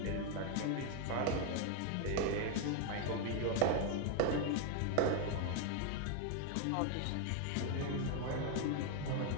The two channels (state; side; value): different; both; correlation 0.01